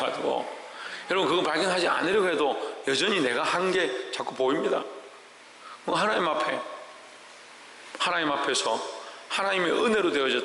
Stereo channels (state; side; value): identical; both; correlation 1.00